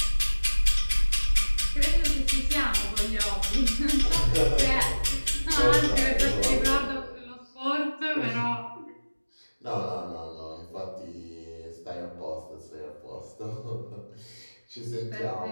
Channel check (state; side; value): inverted; both; correlation -1.00